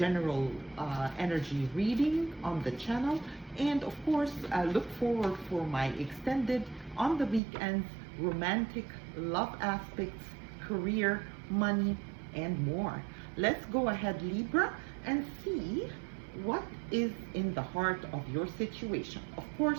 energy reading on the channel. And of course, look forward for my extended on the weekends romantic love aspects, career, money, and more. Let's go ahead, Libra, and see what is in the heart of your situation. Of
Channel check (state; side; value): drops out; left; at 7.4 s